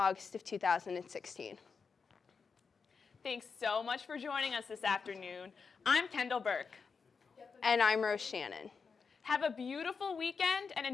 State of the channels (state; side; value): quieter; right; 5.3 dB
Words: of 2016. Thanks so much for joining us this afternoon. I'm Kendall Burke. And I'm Rose Shannon. Have a beautiful weekend and